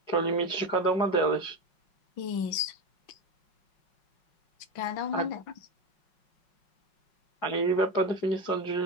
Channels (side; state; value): right; late; 5.4 ms